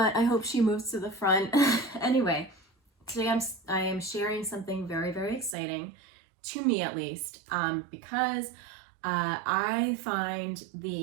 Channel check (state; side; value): drops out; left; at 5.6 s